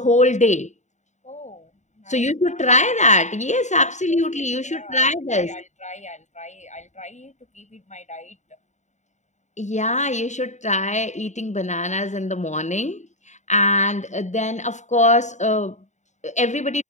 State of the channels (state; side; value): late; right; 0.34 ms